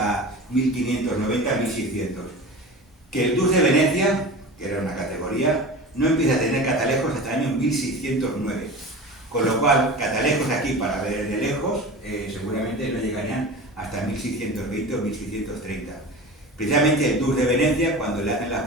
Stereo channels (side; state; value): both; normal; correlation 0.33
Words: 1590-1600, que el Dux de Venecia, que era una categoría, no empieza a tener catalejos hasta el año 1609. Con lo cual, catalejos aquí para ver de lejos seguramente no llegarían hasta 1620 o 1630. Precisamente el Dux de Venecia, cuando le hacen las